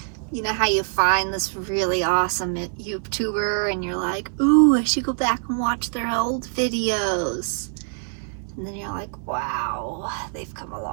You know how you find this really awesome YouTuber and you're like, ooh, I should go back and watch their old videos. And then you're like, wow, they've come a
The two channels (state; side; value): silent; left; 61 dB below the other